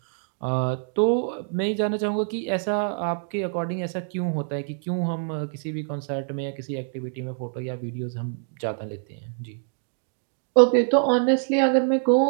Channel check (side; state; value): left; silent; digital silence